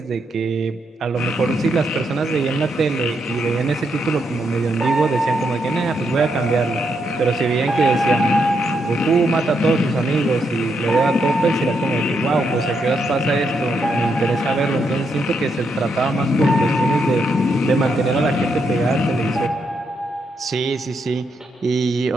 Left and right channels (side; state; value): both; normal; correlation 0.79